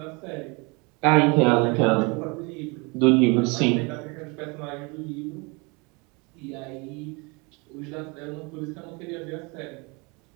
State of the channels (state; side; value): quieter; left; 29.1 dB